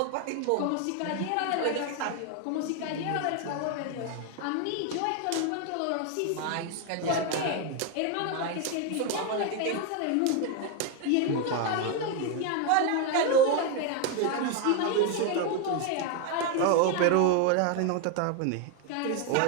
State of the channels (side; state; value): both; different; correlation 0.01